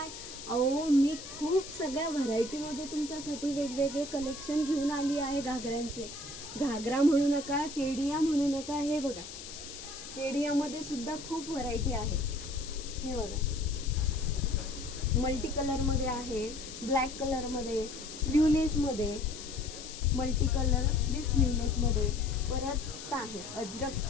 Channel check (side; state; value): left; noise; hiss, 12 dB below the sound